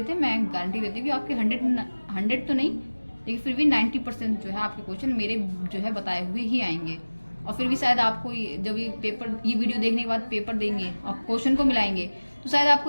मैं गारंटी देती हूँ कि आपके 100 तो नहीं लेकिन फिर भी 90% जो है आपके क्वेश्चन मेरे जो है बताए हुए ही आएंगे। और फिर भी शायद आपको जब ये वीडियो देखने के बाद पेपर देंगे और क्वेश्चन को मिलाएंगे तो शायद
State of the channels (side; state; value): both; inverted; correlation -1.00